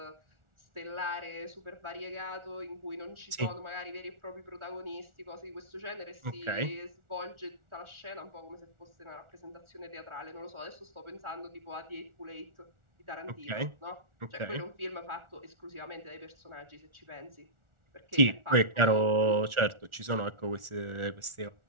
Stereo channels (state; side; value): late; left; 1.4 ms